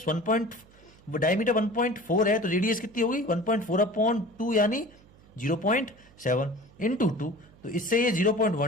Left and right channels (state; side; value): noise; right; hum, 26 dB below the sound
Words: 1. डायमीटर 1.4 है, तो रेडियस कितनी होगी 1.4/2 यानी 0.7 इंटू 2। तो इससे ये